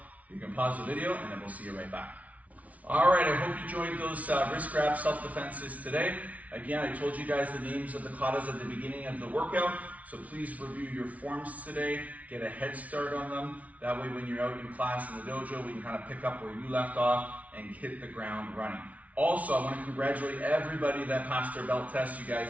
You can pause the video and then we'll see you right back. All right, I hope you enjoyed those wrist grab self-defenses today. Again, I told you guys the names of the katas at the beginning of the workout, so please review your forms today, get a head start on them. That way when you're out in class in the dojo, we can kind of pick up where you left off and hit the ground running. Also, I want to congratulate everybody that passed their belt test. You guys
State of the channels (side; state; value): left; late; 0.069 ms